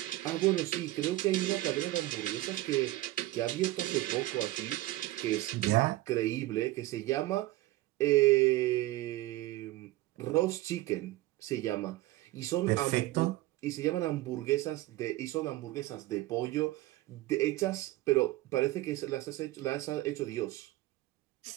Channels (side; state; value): left; quieter; 17.4 dB